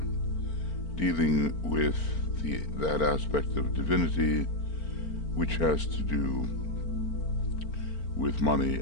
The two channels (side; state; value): right; late; 4.4 ms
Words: dealing with that aspect of divinity which has to do with money